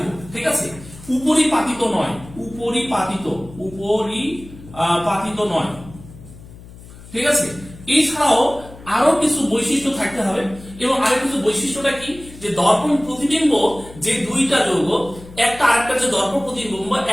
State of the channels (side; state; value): left; noise; hum, 18 dB below the sound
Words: ঠিক আছে। উপরিপাতিত নয়, উপরিপাতিত নয়, ঠিক আছে। এছাড়াও আরো কিছু বৈশিষ্ট্য থাকতে হবে। এবং আরো কিছু বৈশিষ্ট্যটা কি? যে দর্পণ প্রতিবিম্ব যে দুইটা যৌগ, একটা আরেকটা যে দর্পণ প্রতিবিম্ব,